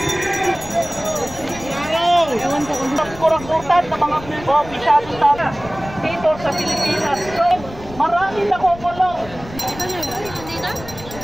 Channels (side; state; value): left; noise; rumble, 15 dB below the sound